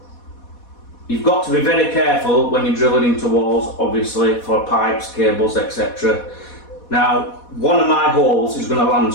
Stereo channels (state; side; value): late; right; 4.2 ms